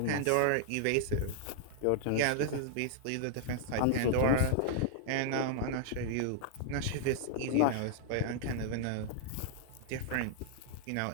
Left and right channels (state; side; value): different; both; correlation 0.00